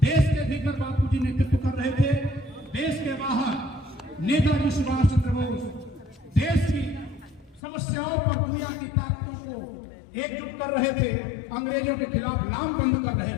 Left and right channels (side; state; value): right; drops out; at 7.6 s